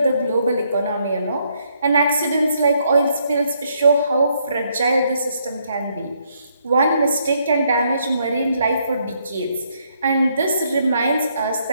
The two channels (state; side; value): inverted; both; correlation -0.73